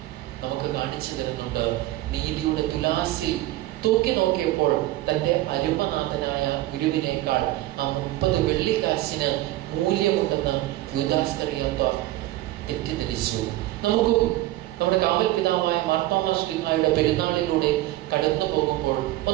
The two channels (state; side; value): quieter; left; 16.5 dB